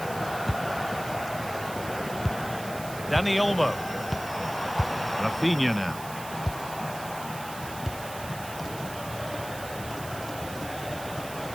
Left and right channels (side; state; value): right; noise; hiss, 13 dB below the sound